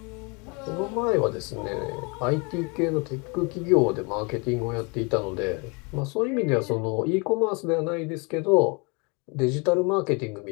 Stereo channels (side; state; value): right; quieter; 30.6 dB